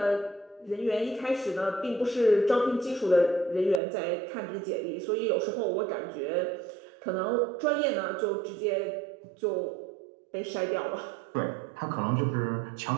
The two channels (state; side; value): drops out; left; at 3.8 s